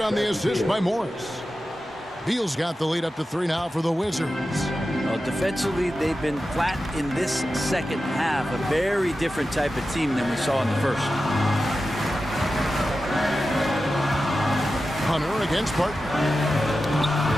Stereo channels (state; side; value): normal; both; correlation 0.92